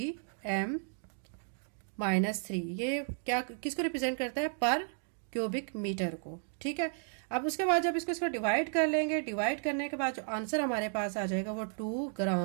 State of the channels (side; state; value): left; silent; 55 dB below the other